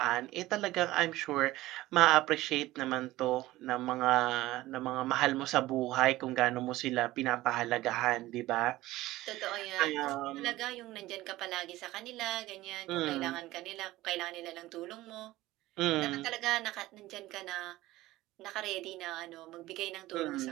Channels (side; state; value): left; quieter; 17.2 dB